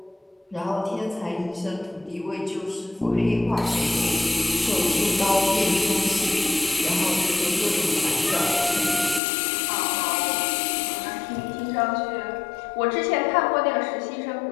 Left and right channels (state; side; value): drops out; right; at 9.2 s